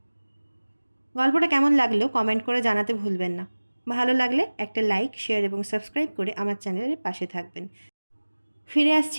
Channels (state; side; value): inverted; both; correlation -1.00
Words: গল্পটা কেমন লাগলো কমেন্ট করে জানাতে ভুলবেন না। ভালো লাগলে একটা লাইক, শেয়ার এবং সাবস্ক্রাইব করে আমার চ্যানেলের পাশে থাকবেন। ফিরে